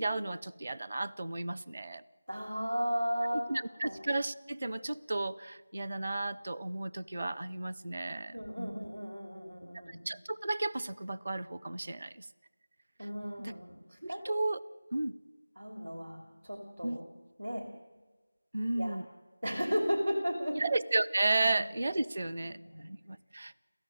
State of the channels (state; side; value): inverted; both; correlation -0.96